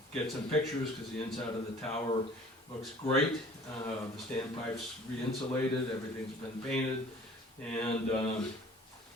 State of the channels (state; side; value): normal; both; correlation 0.49